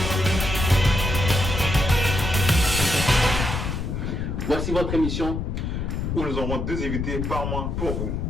Voici votre émission où nous aurons 2 invités par mois pour vous.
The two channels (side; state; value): left; noise; rumble, 2 dB below the sound